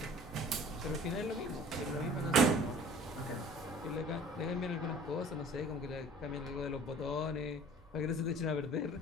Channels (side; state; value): both; normal; correlation 0.47